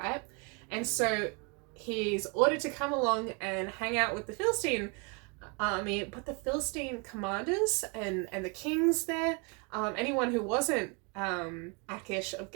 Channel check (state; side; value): quieter; left; 33.1 dB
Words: And so he's ordered to come along and hang out with the Philistine army, but the Philistine commanders and the kings there, anyone who wasn't Achish of